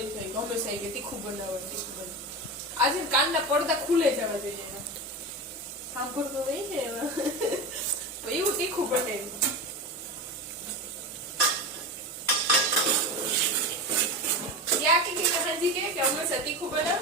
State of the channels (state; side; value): normal; both; correlation 0.23